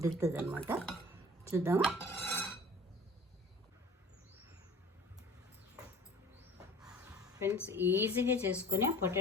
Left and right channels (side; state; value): both; normal; correlation 0.46